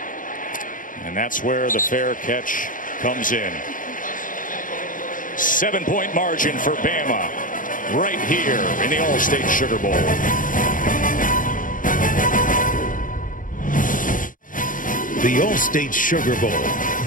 And that's where the fair catch comes in. 7-point margin for Bama right here in the All-State Sugar Bowl. The All-State Sugar Bowl,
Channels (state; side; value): late; right; 0.39 ms